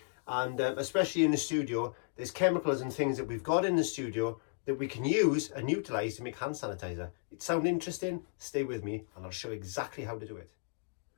and especially in the studio, there's chemicals and things that we've got in the studio that we can use and utilize to make hand sanitizer. It sounds interesting? Stay with me and I'll show you exactly how to do it.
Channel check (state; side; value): silent; right; digital silence